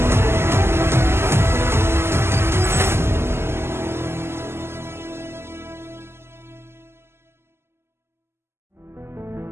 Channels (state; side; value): late; left; 0.12 ms